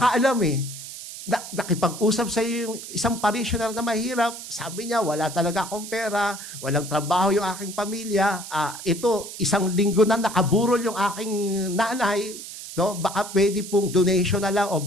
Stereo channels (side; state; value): right; noise; hiss, 11 dB below the sound